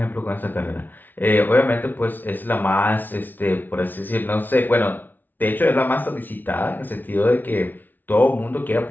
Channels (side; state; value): right; late; 0.086 ms